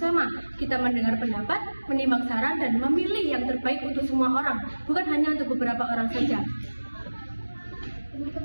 Kita mendengar pendapat, menimbang saran, dan memilih yang terbaik untuk semua orang, bukan hanya untuk beberapa orang saja.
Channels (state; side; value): inverted; both; correlation -1.00